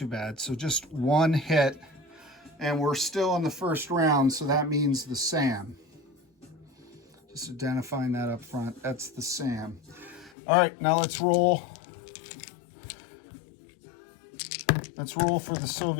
bad. So just 1 hit, and we're still in the first round, so that means the SAM. Just identifying that up front, that's the SAM. All right, now let's roll. Let's roll for the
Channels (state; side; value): drops out; right; at 10.3 s